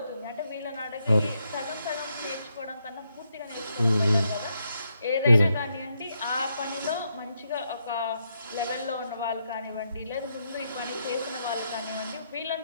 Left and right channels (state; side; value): inverted; both; correlation -0.80